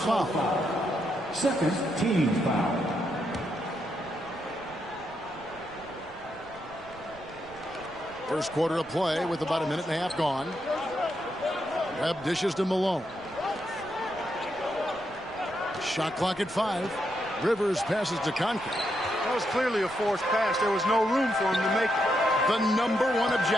Second team foul. First quarter of play with about a minute and a half gone. Webb dishes to Malone. Shot clock at 5. Rivers passes to Conklin. That was clearly a forced pass. There was no room for him to make it. The number one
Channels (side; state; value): right; noise; rumble, 22 dB below the sound